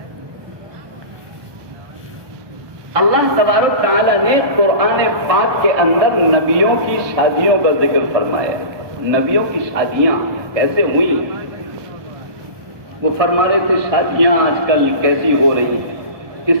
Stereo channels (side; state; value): left; late; 1.2 ms